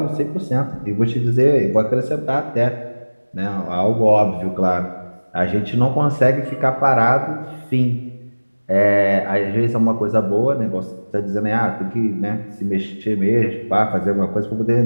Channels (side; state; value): both; inverted; correlation -1.00